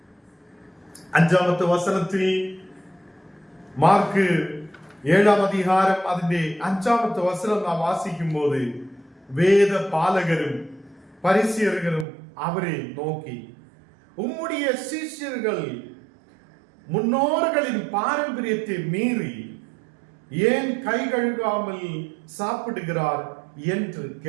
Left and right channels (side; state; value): left; drops out; at 12.1 s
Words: 5வது வசனத்தில் மார்க்கு 7ஆம் அதிகாரம் അതിന്റെ 5வது வசனம் நாம் வாசிக்கும் போது வேத பாலகரும் பரிசேயர்களும் அவரை நோக்கி, உம்முடைய சீஷர்கள் முன்னோர்களின் பாரம்பரியத்தை மீறி ஏன் கை கழுகாமல் சாப்பிடுகிறார் என்று